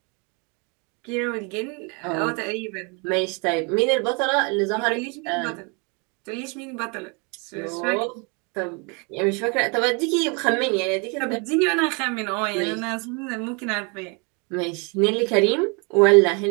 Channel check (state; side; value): quieter; left; 32.7 dB